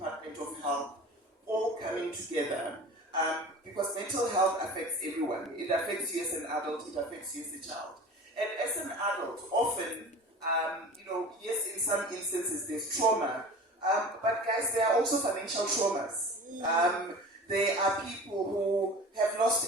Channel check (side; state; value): both; normal; correlation 0.38